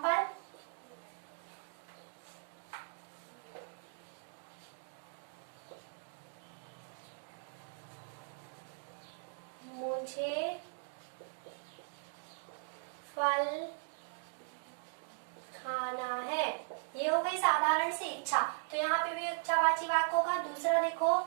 मुझे फल खाना है, ये हो गई साधारण सी इच्छा, तो यहाँ पे भी इच्छावाची वाक्य होगा। दूसरा देखो,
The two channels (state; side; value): silent; left; digital silence